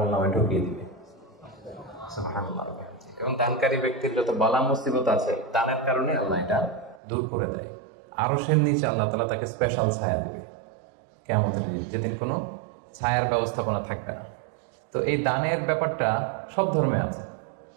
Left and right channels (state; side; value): drops out; left; at 7.0 s